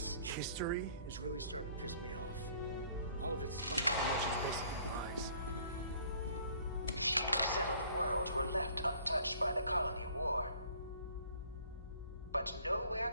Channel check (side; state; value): both; inverted; correlation -0.56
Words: history is really starting to piss me off. All of its fun information is basically lies. Few settled worlds were left untouched by the colony war. But nowhere